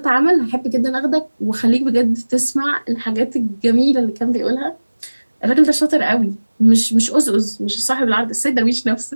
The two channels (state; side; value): inverted; both; correlation -1.00